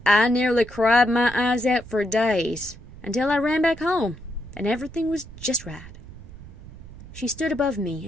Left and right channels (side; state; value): right; noise; rumble, 16 dB below the sound